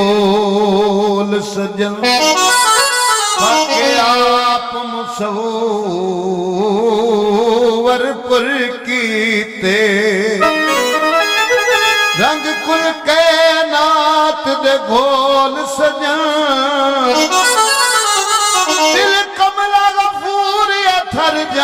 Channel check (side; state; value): both; identical; correlation 1.00